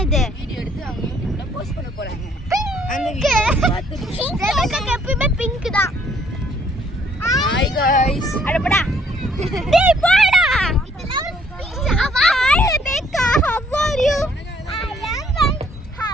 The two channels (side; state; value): both; normal; correlation 0.65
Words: வீடியோ எடுத்து அவங்க யூடியூப்ல போஸ்ட் பண்ண போறாங்க. அந்த வீடியோ பார்த்து ரெபேக்கா எப்பவுமே பிங்க் தான். Hi guys. அடடா டேய் போடா. இதெல்லாம் speech. Hi Rebecca, how are you?